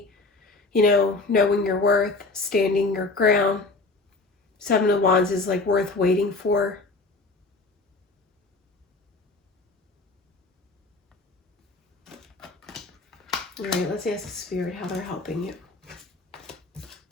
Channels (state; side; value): quieter; right; 3.4 dB